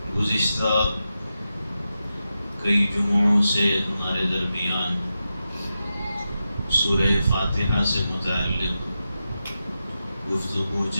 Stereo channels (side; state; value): both; inverted; correlation -0.90